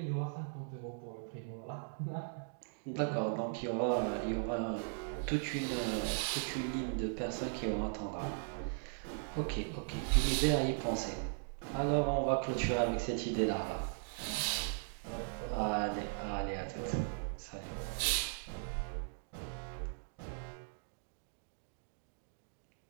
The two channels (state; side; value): silent; left; digital silence